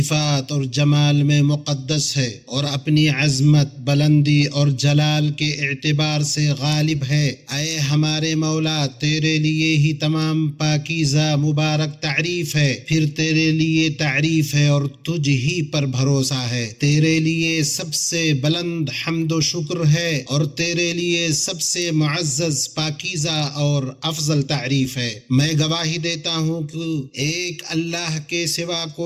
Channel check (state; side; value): identical; both; correlation 1.00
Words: اور جمال میں مقدس ہے اور اپنی عظمت، بلندی اور جلال کے اعتبار سے غالب ہے۔ اے ہمارے مولا، تیرے لیے ہی تمام پاکیزہ مبارک تعریف ہے، پھر تیرے لیے تعریف ہے اور تجھ ہی پر بھروسہ ہے۔ تیرے لیے سب سے بلند حمد و شکر ہے اور تیرے لیے سب سے معزز، پاکیزہ اور افضل تعریف ہے۔ میں گواہی دیتا ہوں کہ ایک اللہ کے سوا